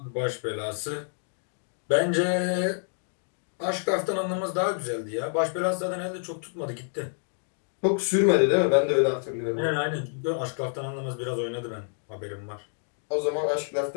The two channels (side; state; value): right; silent; 59 dB below the other